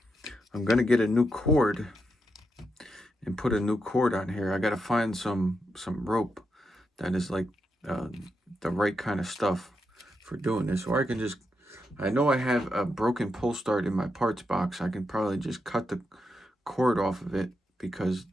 gonna get a new cord and put a new cord on here. I gotta find some rope that is like the right kind of stuff for doing this, or I can just, I know I have a broken pull start in my parts box. I can probably just cut the cord off of it because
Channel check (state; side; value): normal; both; correlation 0.84